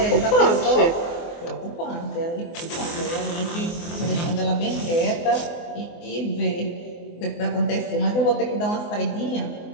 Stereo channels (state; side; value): late; right; 24 ms